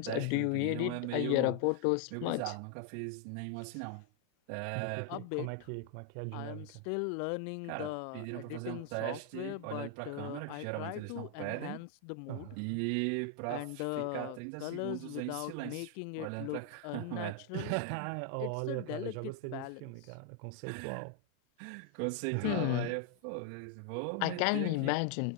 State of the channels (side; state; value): both; different; correlation 0.00